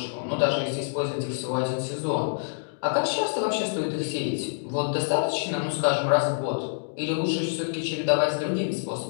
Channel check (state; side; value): silent; right; digital silence